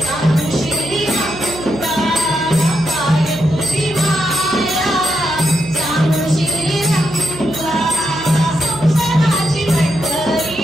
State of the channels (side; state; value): right; noise; hum, 15 dB below the sound